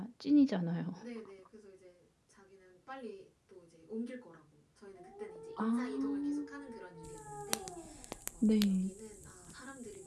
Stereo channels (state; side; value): identical; both; correlation 1.00